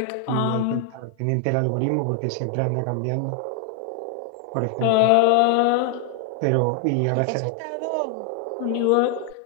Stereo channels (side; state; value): both; different; correlation 0.00